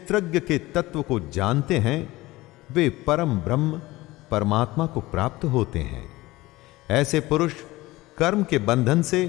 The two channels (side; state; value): right; quieter; 19.3 dB